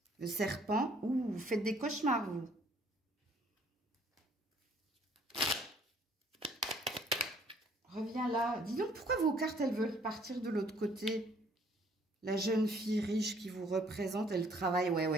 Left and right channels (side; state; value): both; normal; correlation 0.61